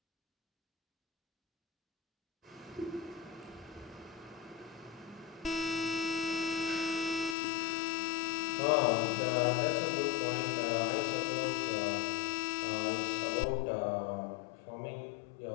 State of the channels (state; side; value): drops out; right; at 7.4 s